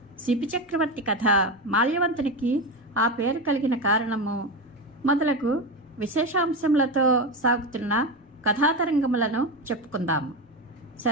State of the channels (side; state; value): both; normal; correlation 0.17